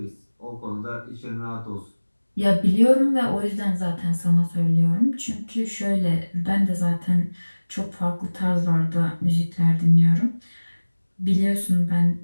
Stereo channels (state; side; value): inverted; both; correlation -1.00